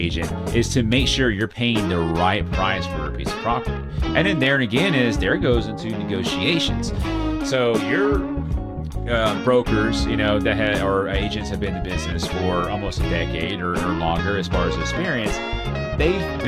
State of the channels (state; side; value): identical; both; correlation 1.00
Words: is to make sure you're paying the right price for a piece of property. And then there and again is there goes into negotiations. So your brokers, that or agents have been in the business for almost a decade or longer as far as experience. They've